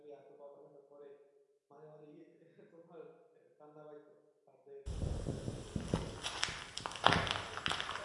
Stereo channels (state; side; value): identical; both; correlation 1.00